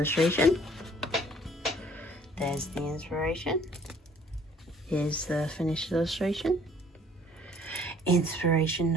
There's the inspiration. Here's the finished illustration. Inspiration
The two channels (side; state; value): both; normal; correlation 0.57